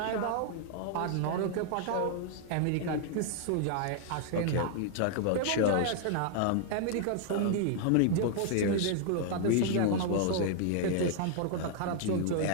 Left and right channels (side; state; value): both; different; correlation 0.00